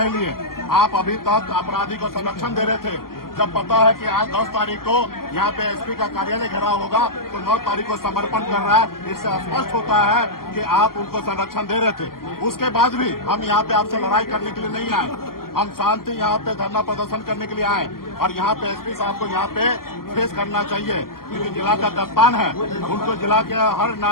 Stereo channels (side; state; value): right; late; 0.92 ms